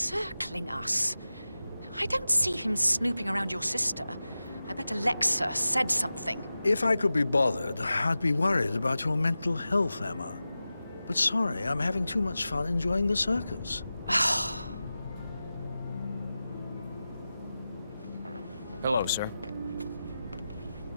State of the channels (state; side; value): inverted; both; correlation -0.94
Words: us. I don't see him snooping around your sister. I bet Alexa said something. If I could be bothered, I'd be worried about your mental health, Emma. But sorry, I'm having too much fun enjoying the circus. Hello, sir.